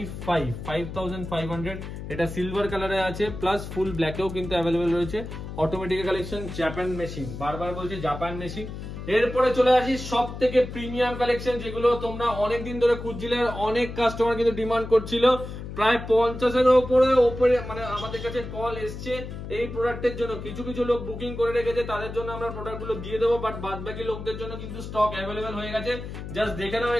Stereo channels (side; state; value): left; noise; hum, 9 dB below the sound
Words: এটা সিলভার কালারে আছে, প্লাস ফুল ব্ল্যাকেও কিন্তু অ্যাভেলেবেল রয়েছে। অটোমেটিক কালেকশন, জাপান মেশিন, বারবার বলছি জাপান মেশিন। এরপরে চলে আসি সব থেকে প্রিমিয়াম কালেকশন, যেগুলো তোমরা অনেকদিন ধরে খুঁজছিলে, আর অনেক কাস্টমার কিন্তু ডিমান্ড করছিল। প্রায় 50-এর উপরে মানে আমাদের কাছে কল এসছে এই প্রোডাক্টের জন্য। কিছু কিছু লোক বুকিং করে রেখেছে, তাদের জন্য আমরা প্রোডাক্টগুলো দিয়ে দেবো, বাট বাদ বাকি লোকদের জন্য কিন্তু স্টক অ্যাভেলেবেল হয়ে গেছে। জাস্ট দেখে নাও,